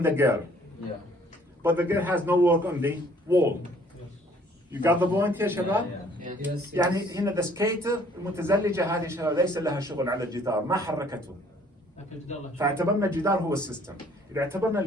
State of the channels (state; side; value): normal; both; correlation 0.59